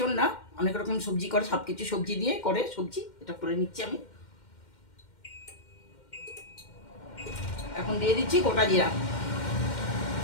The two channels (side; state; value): right; late; 2.1 ms